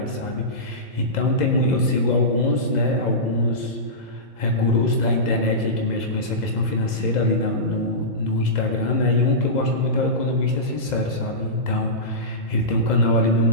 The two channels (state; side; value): late; right; 2.0 ms